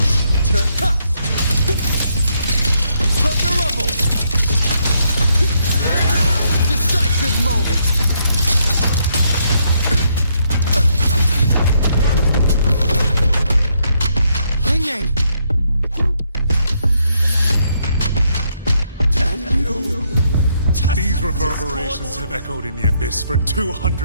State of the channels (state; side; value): inverted; both; correlation -0.74